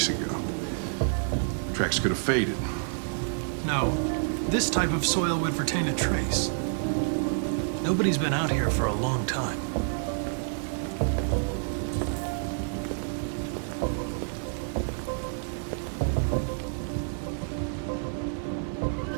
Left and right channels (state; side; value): silent; left; digital silence